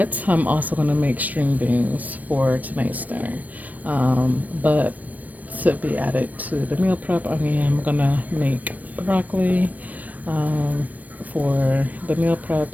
I'm also gonna make string beans for tonight's dinner. But to be added to the meal prep, I mean, I'm gonna make broccoli for the meal prep.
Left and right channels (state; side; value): late; left; 0.078 ms